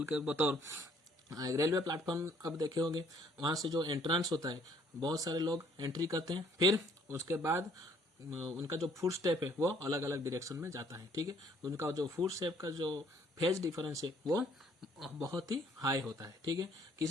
के बतौर रेलवे प्लेटफॉर्म, अब देखे होंगे वहां से जो एंट्रेंस होता है बहुत सारे लोग एंट्री करते हैं, फिर उसके बाद उनका जो फुट स्टेप है वो अलग अलग डायरेक्शन में जाता है, ठीक है। उनका जो फुट स्टेप का जो फेज डिफरेंस है वो बहुत ही हाई होता है, ठीक है।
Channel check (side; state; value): both; normal; correlation 0.62